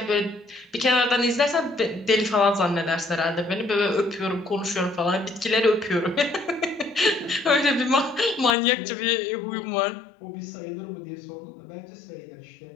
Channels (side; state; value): right; drops out; at 8.6 s